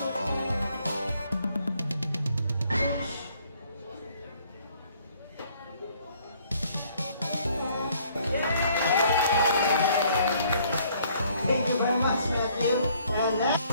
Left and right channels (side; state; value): both; inverted; correlation -0.63